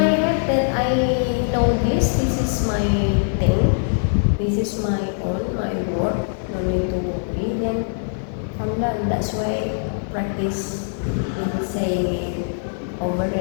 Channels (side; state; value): right; silent; 64 dB below the other